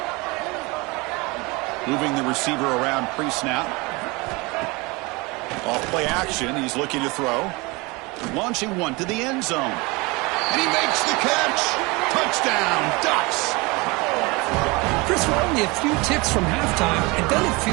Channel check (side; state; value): left; quieter; 25.5 dB